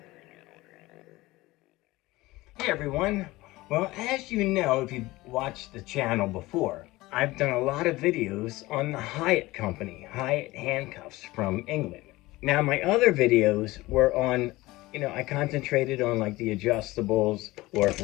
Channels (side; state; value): right; quieter; 19.5 dB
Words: everyone, well, as you know, if you've watched the channel before, I've done a lot of videos on the Hiatt company, Hiatt handcuffs from England. Now my other videos were on, I concentrated on like the adjustables, or